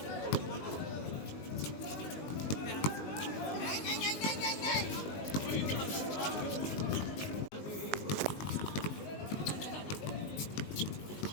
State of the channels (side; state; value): right; late; 19 ms